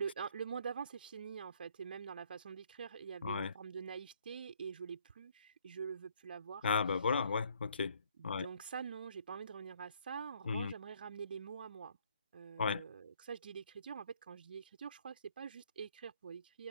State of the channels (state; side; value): inverted; both; correlation -0.64